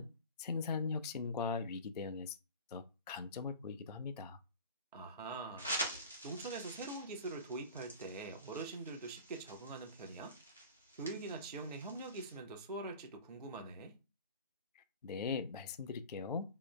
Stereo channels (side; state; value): both; inverted; correlation -0.37